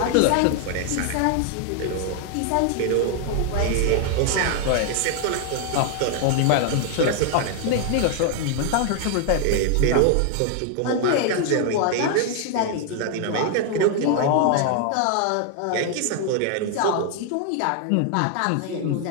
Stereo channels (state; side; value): different; both; correlation 0.00